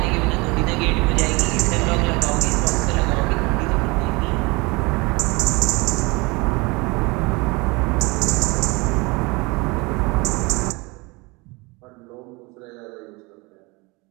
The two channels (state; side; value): quieter; left; 25.9 dB